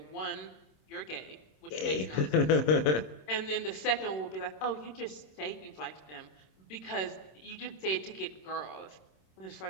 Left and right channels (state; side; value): late; right; 26 ms